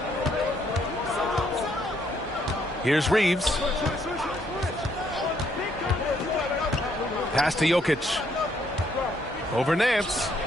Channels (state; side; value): normal; both; correlation 0.71